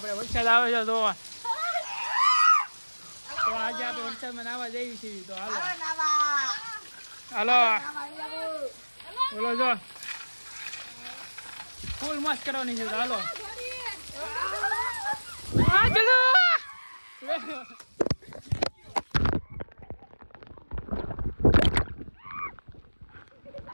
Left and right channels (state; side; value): inverted; both; correlation -1.00